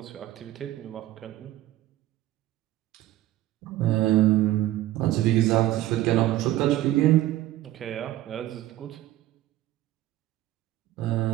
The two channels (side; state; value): left; quieter; 14.8 dB